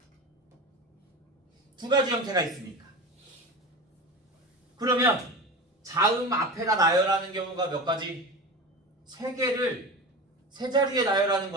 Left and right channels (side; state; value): both; normal; correlation 0.29